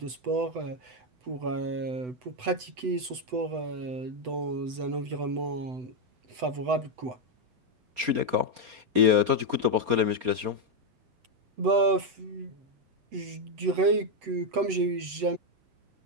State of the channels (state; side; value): late; left; 8.0 ms